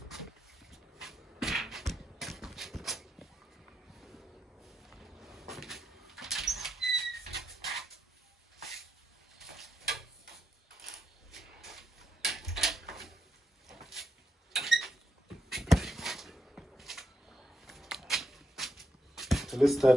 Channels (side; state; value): both; normal; correlation 0.82